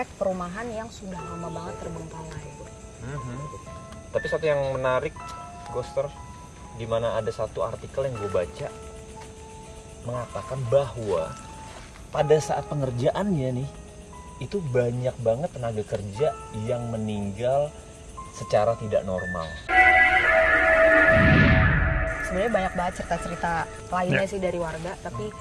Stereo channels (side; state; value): both; identical; correlation 1.00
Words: perumahan yang sudah lama banget terbengkalai. Tapi satu yang menarik, Ghoster, di mana ada satu artikel yang gue baca mengatakan bahwa pada saat pengerjaannya nih itu banyak banget tenaga kerja yang meninggal secara tidak normal. Sebenarnya banyak banget cerita-cerita lainnya sih dari warga, tapi